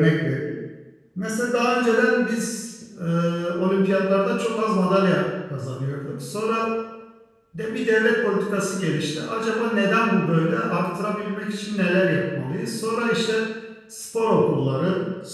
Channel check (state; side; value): identical; both; correlation 1.00